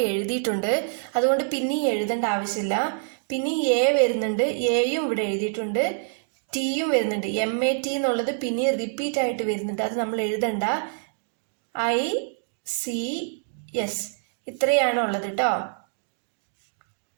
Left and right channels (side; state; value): left; silent; digital silence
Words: എഴുതിയിട്ടുണ്ട്, അതുകൊണ്ട് പിന്നെ എഴുതേണ്ട ആവശ്യമില്ല. പിന്നെ എ വരുന്നുണ്ട്, എയും ഇവിടെ എഴുതിയിട്ടുണ്ട്. ടിയും വരുന്നുണ്ട്, MAT എന്നുള്ളത് പിന്നെ റിപ്പീറ്റ് ആയിട്ട് വരുന്നുണ്ട്, അത് നമ്മൾ എഴുതണ്ട. ICS ഇത്രയാണ് ഉള്ളത് കേട്ടോ.